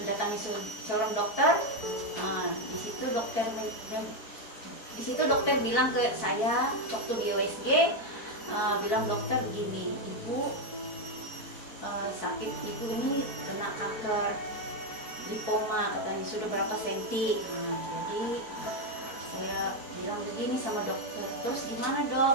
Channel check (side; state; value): right; late; 4.6 ms